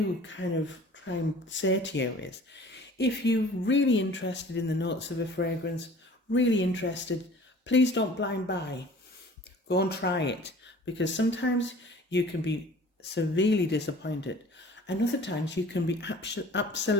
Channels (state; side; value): normal; both; correlation 0.47